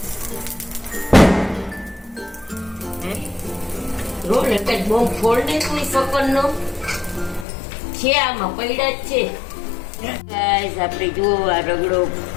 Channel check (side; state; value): right; drops out; at 7.5 s